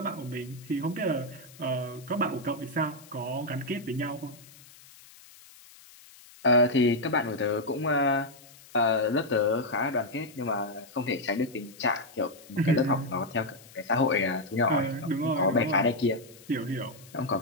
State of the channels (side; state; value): left; noise; hiss, 22 dB below the sound